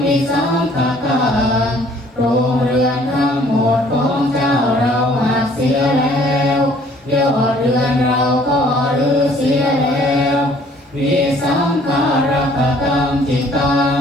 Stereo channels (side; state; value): both; normal; correlation 0.58